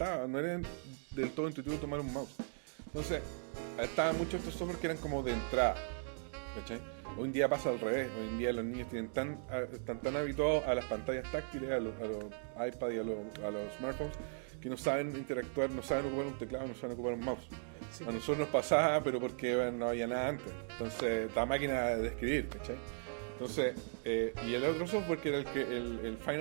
no era del todo intuitivo tomar un mouse. Entonces, estaban muchos estos software que eran como de entrada, ¿cachai? Hoy en día pasa al revés. Hoy en día los niños están tan habituados a las pantallas táctiles, a los iPad y a los smartphones, que no saben interactuar, no saben ocupar un teclado, no saben ocupar un mouse. Sí. A nosotros nos pasaba, pero porque no había nada antes. Entonces, esta máquina de escribir, ¿cachai? Entonces, y el otro software que era el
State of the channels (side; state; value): left; silent; digital silence